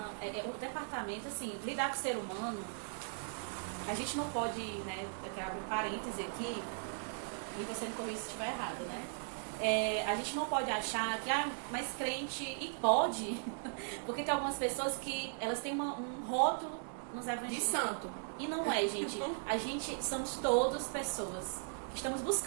departamento, assim, lidar com o ser humano, a gente não pode, né, eu quero abrir um parêntese aqui, e você me corrija se estiver errado, né? A gente não pode achar que, mas crente, e pode, porque tem algumas pessoas que elas têm um rótulo nos evangelhos. De santo. E não é, gente. A gente somos todos pessoas que estamos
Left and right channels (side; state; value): left; silent; digital silence